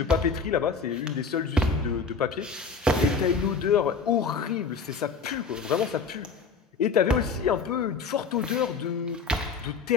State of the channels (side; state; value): right; quieter; 5.0 dB